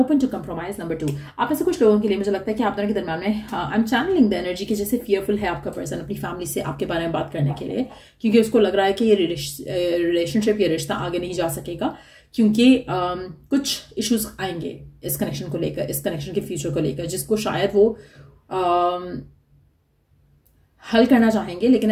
to compromise, number 2। आप ऐसे कुछ लोगों के लिए मुझे लगता है कि आप दोनों के दरमियान में I am channelling the energy की जैसे फियरफुल है आपका पर्सन अपनी फैमिली से आपके बारे में बात करने के लिए, क्योंकि उसको लग रहा है कि ये रिलेशनशिप, ये रिश्ता आगे नहीं जा सकेगा, क्योंकि कुछ इश्यूज आएंगे इस कनेक्शन को लेकर, इस कनेक्शन के फ्यूचर को लेकर, जिसको शायद वो हल करना चाहेंगे, लेकिन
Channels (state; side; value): identical; both; correlation 1.00